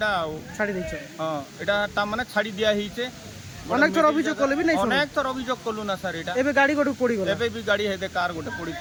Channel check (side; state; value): both; identical; correlation 1.00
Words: ছাড়ি দিছ হ্যাঁ এটা তা মানে ছাড়ি দিয়া হইছে অনেক থর অভিযোগ করলে বি নাই অনেক থর অভিযোগ করলু না স্যার এটা এবে গাড়ি গটু পড়ি গলা এবে भी গাড়ি হেদে কার গোটে পড়ি